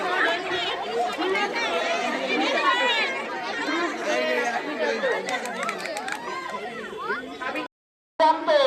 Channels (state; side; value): identical; both; correlation 1.00